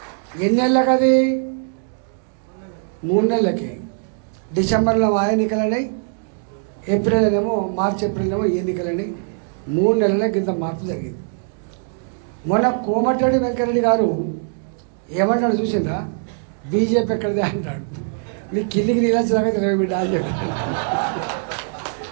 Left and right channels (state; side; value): silent; left; digital silence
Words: ఎన్నేళ్ళకి అది? 3 నెలలకి. డిసెంబర్లో ఆ ఎన్నికలన్నాయి, మార్చి ఏప్రిల్ ఎన్నికలని 3 నెలలకి ఇంత మార్పు జరిగింది. మొన్న కోమటిరెడ్డి వెంకరెడ్డి గారు ఏమంటాడు చూసిందా? బీజేపీ ఎక్కడిదే అంటాడు. నీ కిందికి నీళ్ళు వచ్చేదాకా తెలివి బిడ్డ అని చెప్పాడు.